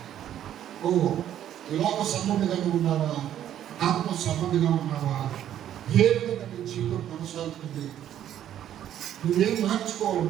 లోక సంబంధిగా ఉన్నావా, ఆత్మ సంబంధిగా ఉన్నావా, ఏ విధంగా నీ జీవితం కొనసాగుతుంది, నువ్వేం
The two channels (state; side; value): quieter; left; 11.0 dB